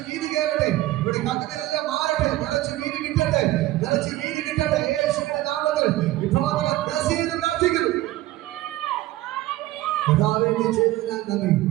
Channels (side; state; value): left; quieter; 16.3 dB